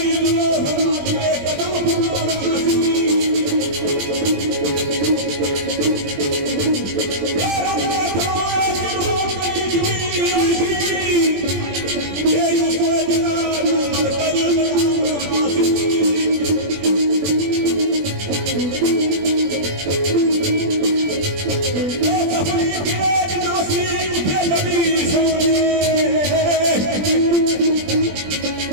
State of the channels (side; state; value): left; late; 20 ms